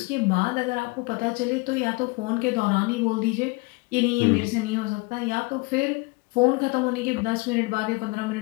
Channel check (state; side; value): quieter; right; 26.5 dB